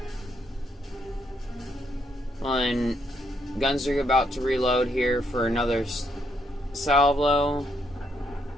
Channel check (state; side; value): normal; both; correlation 0.74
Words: And guns are about to reload here for another salvo.